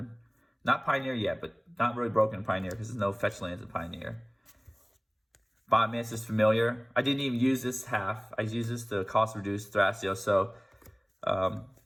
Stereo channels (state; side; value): identical; both; correlation 1.00